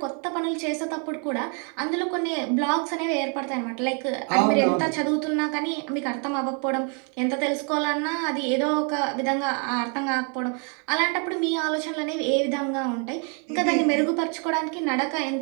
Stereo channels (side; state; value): left; quieter; 38.9 dB